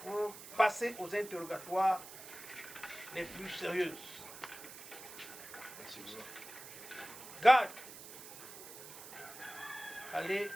pour passer aux interrogatoires les plus sérieuses. Garde, allez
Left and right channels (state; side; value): noise; right; hiss, 14 dB below the sound